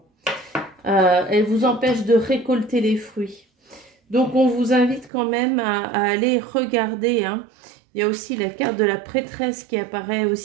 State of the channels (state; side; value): drops out; left; at 5.1 s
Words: Elle vous empêche de récolter les fruits. Donc, on vous invite quand même à aller regarder. Hein. Il y a aussi la carte de la prêtresse qui apparaît